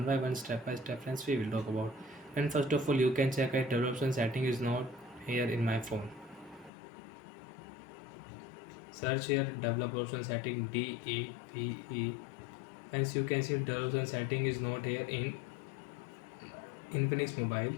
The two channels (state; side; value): drops out; right; at 6.7 s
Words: by one, step by step friends we will talk about. And first of all, you can check that development setting is not here in my phone. Search here development setting DEVE. Friends, you can see development setting is not here in Infinix mobile.